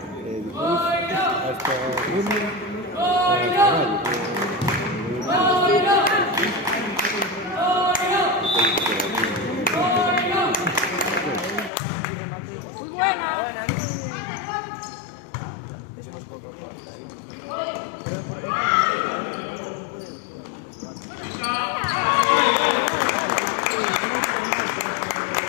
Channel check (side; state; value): right; drops out; at 11.7 s